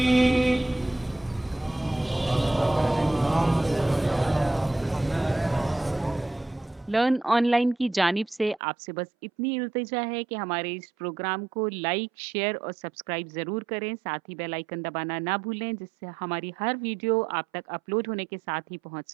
लर्न ऑनलाइन की जानिब से आपसे बस इतनी इल्तिजा है कि हमारे इस प्रोग्राम को लाइक, शेयर और सब्सक्राइब ज़रूर करें। साथ ही बेल आइकन दबाना ना भूलें, जिससे हमारी हर वीडियो आप तक अपलोड होने के साथ ही पहुंच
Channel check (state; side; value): drops out; left; at 8.6 s